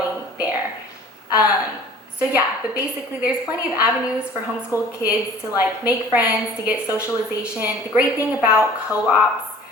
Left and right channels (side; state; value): both; normal; correlation 0.48